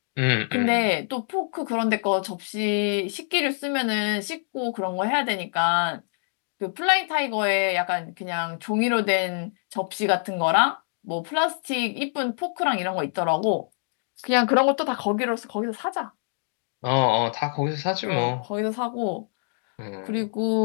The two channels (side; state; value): right; silent; digital silence